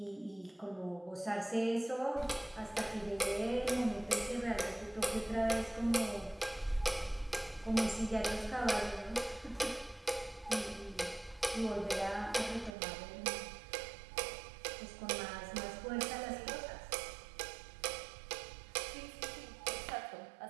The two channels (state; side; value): drops out; left; at 12.8 s